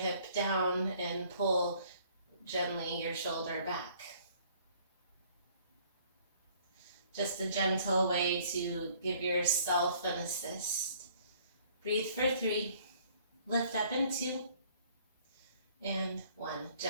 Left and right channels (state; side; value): inverted; both; correlation -0.58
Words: down and pull gently your shoulder back. Just a gentle way to give yourself an assist. Breathe for 3, lift up in 2, and 1.